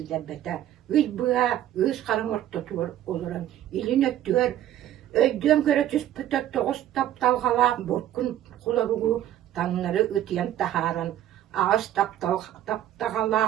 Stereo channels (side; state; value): left; quieter; 12.2 dB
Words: Üz bığa, üz karın orta tuğur oluran. İlin öttüğür, öydüğüm göre tüspüte toğuz taptalğala borkun kularuğu tanları öteyen taharan. Ağız